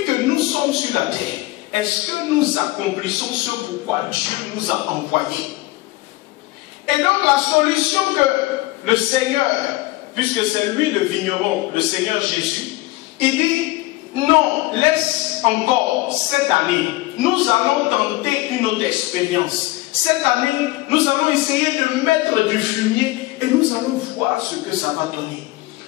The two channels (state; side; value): quieter; right; 19.4 dB